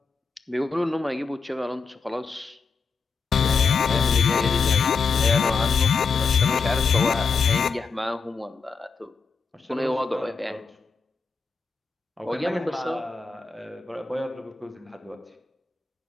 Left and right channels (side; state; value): right; quieter; 5.1 dB